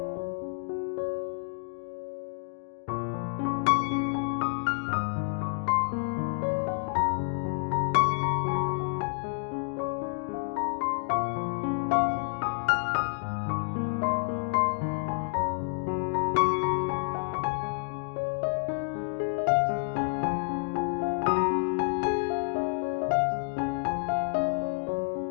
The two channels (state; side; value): silent; right; digital silence